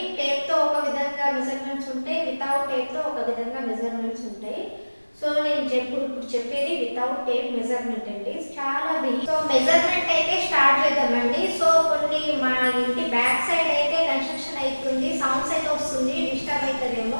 టేప్తో ఒక విధంగా మెజర్మెంట్స్ ఉంటాయి, వితౌట్ టేప్తో ఒక విధంగా మెజర్మెంట్స్ ఉంటాయి. సో నేను ఇప్పుడు చెప్పేది వితౌట్ టేప్ మెజర్మెంట్ అండి. చాలా సో మెజర్మెంట్ అయితే స్టార్ట్ చేద్దామండి. సో కొన్ని మా ఇంటి బ్యాక్ సైడ్ అయితే కన్స్ట్రక్షన్ అవుతుంది, సౌండ్స్ అయితే వస్తుంది, డిస్టర్బ్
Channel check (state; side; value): inverted; both; correlation -1.00